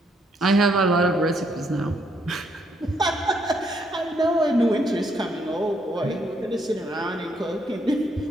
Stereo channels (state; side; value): normal; both; correlation 0.72